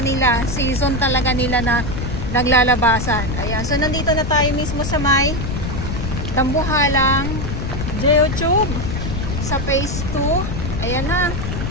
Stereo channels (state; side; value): noise; left; rumble, 3 dB below the sound